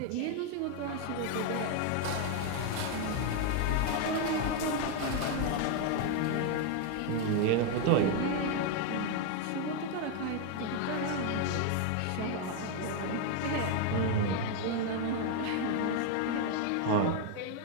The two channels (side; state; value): both; different; correlation 0.01